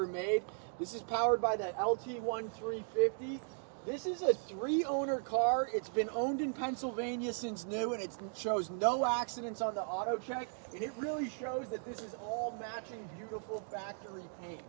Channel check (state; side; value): silent; left; digital silence